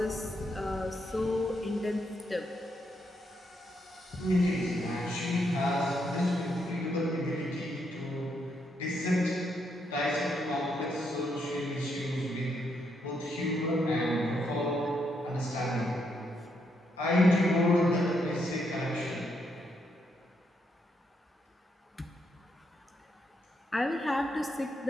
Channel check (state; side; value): normal; both; correlation 0.78